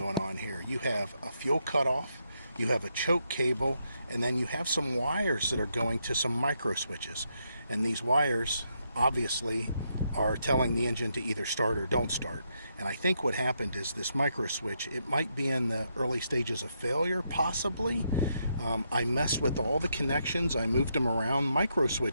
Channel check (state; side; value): inverted; both; correlation -0.79